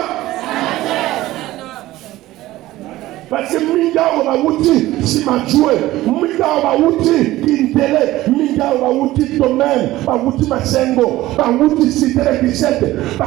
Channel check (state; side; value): quieter; left; 16.4 dB